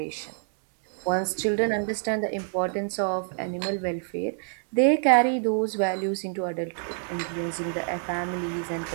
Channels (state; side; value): silent; left; 60 dB below the other